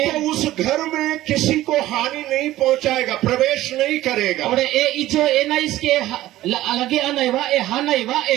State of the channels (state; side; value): quieter; left; 15.3 dB